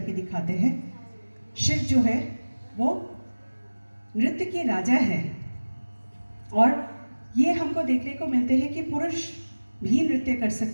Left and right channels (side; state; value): both; inverted; correlation -1.00